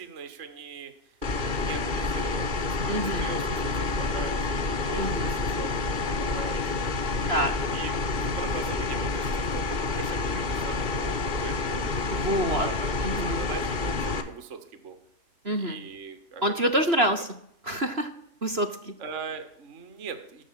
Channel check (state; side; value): late; left; 3.0 ms